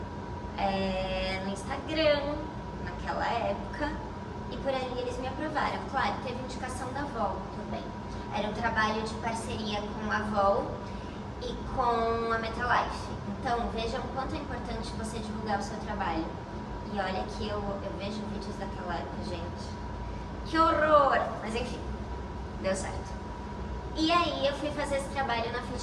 no Instagram, naquela época, e por ali eles me aprovaram. Claro, teve indicação da Avol também. Era um trabalho de parceria com a Avol e com a Metalife. Então, vejam o quanto é importante você divulgar o seu trabalho. E olha que eu vejo vídeos daquela época, gente. Que horror! Mas enfim, deu certo. E aí eu fui fazer esse trabalho na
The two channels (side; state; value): both; identical; correlation 1.00